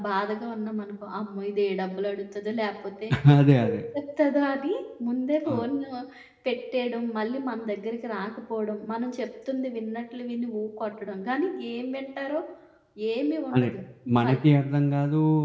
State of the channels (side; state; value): both; identical; correlation 1.00